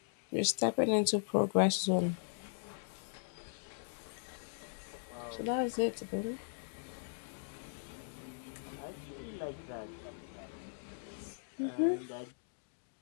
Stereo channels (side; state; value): right; silent; digital silence